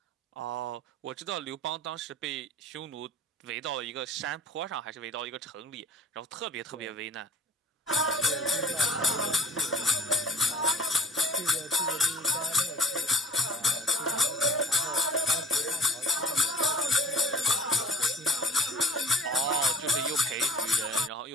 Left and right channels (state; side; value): normal; both; correlation 0.51